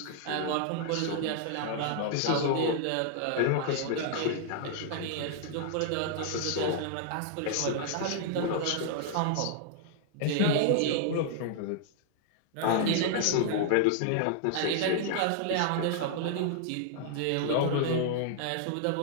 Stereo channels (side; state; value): both; different; correlation -0.01